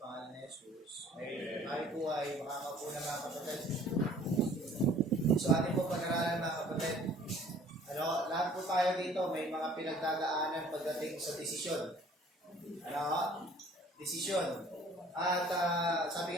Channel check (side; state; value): both; normal; correlation 0.53